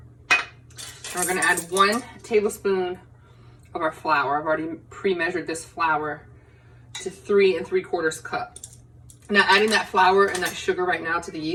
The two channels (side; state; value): both; identical; correlation 1.00